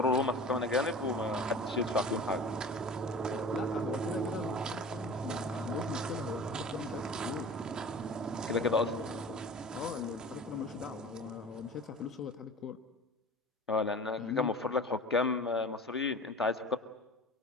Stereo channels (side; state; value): both; normal; correlation 0.39